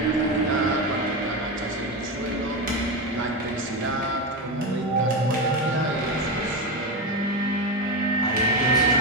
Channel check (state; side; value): normal; both; correlation 0.15